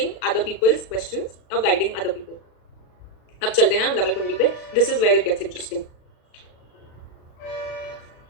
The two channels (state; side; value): late; right; 37 ms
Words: other people's questions, of guiding other people. अब चलते हैं रमल कुंडली पे, this is where it gets interesting.